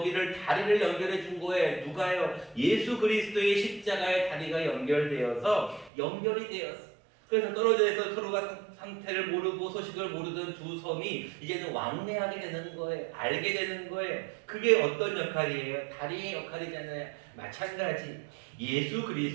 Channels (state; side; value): drops out; left; at 5.9 s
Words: 다리를 연결해 준 거예요. 누가요? 예수 그리스도의 십자가의 다리가 연결되어서 연결이 되었어요. 그래서 떨어져 있어 서로가 상태를 모르고 소식을 모르던 두 섬이 이제는 왕래하게 되는 거예요. 알게 되는 거예요. 그게 어떤 역할이에요? 다리의 역할이잖아요. 마찬가지 예수